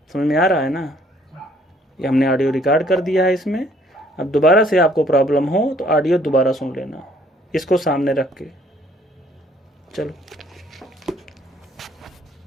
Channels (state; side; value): normal; both; correlation 0.62